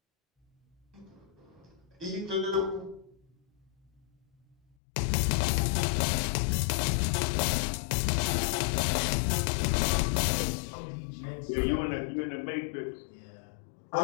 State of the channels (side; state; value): right; drops out; at 4.8 s